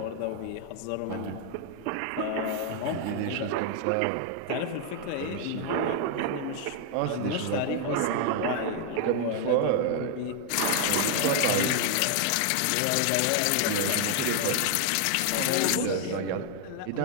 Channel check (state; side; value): different; both; correlation 0.00